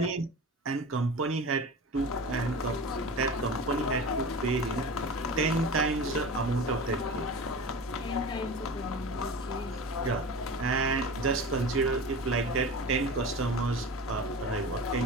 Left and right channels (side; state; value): both; normal; correlation 0.32